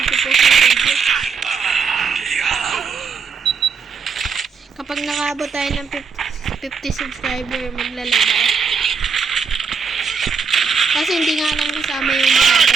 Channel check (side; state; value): left; quieter; 5.6 dB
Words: ng video. Kapag nakaabot tayo ng 50 subscriber, magla-live ako. Kasi hindi nga lang kasama yung mga